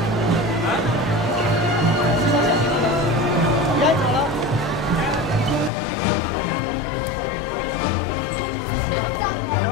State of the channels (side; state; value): right; drops out; at 5.7 s